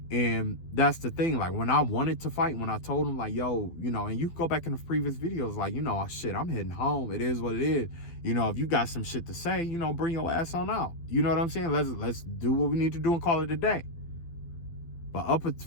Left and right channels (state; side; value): late; right; 12 ms